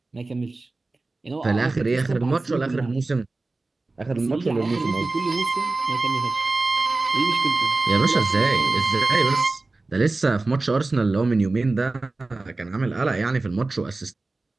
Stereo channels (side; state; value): left; quieter; 3.3 dB